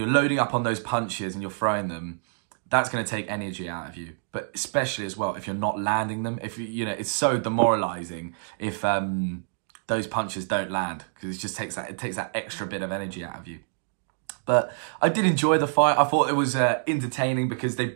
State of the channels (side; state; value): left; silent; digital silence